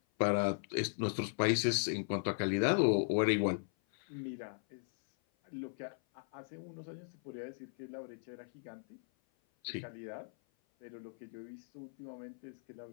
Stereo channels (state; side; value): silent; right; 53 dB below the other